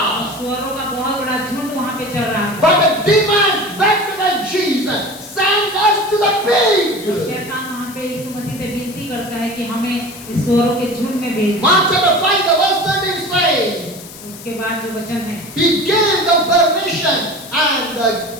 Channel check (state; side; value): noise; left; hiss, 16 dB below the sound